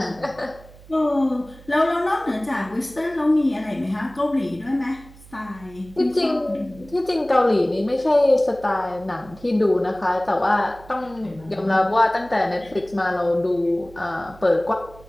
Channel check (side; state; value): right; noise; hum, 21 dB below the sound